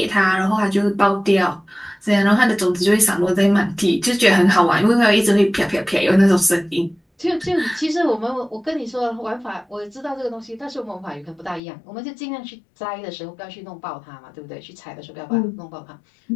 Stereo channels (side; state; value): right; drops out; at 11.6 s